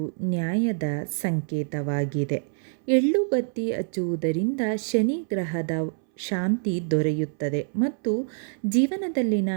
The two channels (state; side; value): silent; left; 61 dB below the other